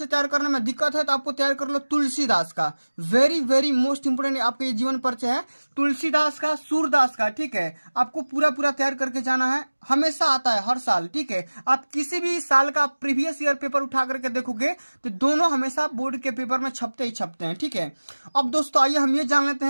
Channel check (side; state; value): both; inverted; correlation -1.00